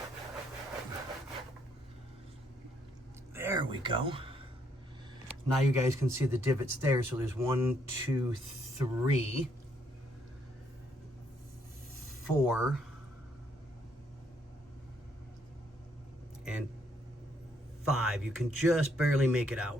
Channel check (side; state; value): both; normal; correlation 0.71